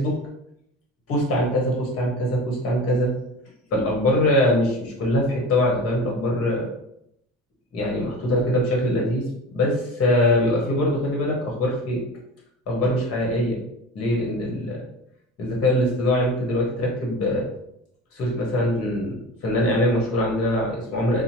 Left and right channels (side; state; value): both; normal; correlation 0.33